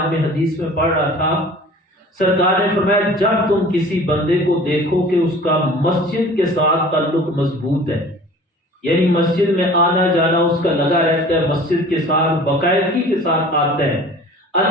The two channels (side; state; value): both; normal; correlation 0.45